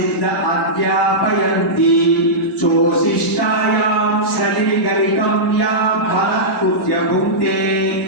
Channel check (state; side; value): normal; both; correlation -0.13